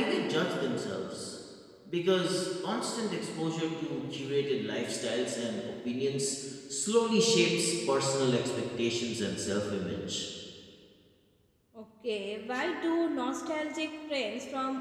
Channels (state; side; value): identical; both; correlation 1.00